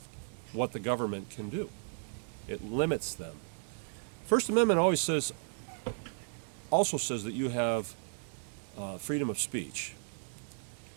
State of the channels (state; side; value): silent; left; digital silence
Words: what the government can do. It limits them. First Amendment also says that you have freedom of speech.